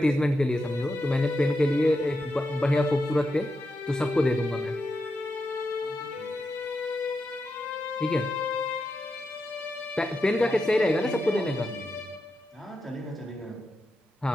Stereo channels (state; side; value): normal; both; correlation 0.87